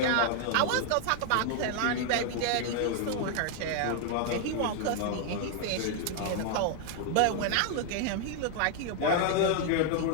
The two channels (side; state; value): both; different; correlation 0.00